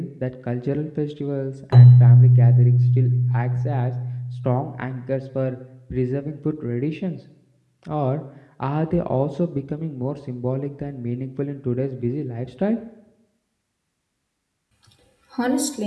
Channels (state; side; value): identical; both; correlation 1.00